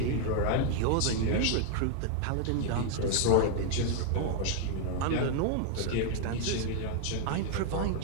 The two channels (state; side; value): different; both; correlation 0.00